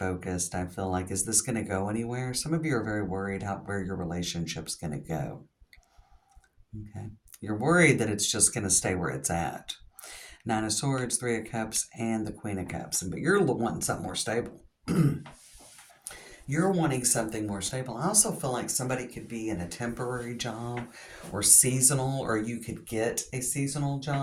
I feel like, is this going to go anywhere? Some of you are very worried where your relationship's going to go, okay? You're worried that it's just going to stay where it's at. Nine of Swords, Three of Cups, and the Queen of Cups. But you're wanting something more stable. You're wanting something more stable. I also feel like somebody could be in a temporary job or seasonal, or you could get a seasonal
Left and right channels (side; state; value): both; identical; correlation 1.00